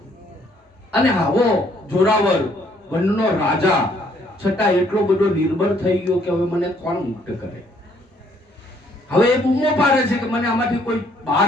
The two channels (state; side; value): normal; both; correlation 0.66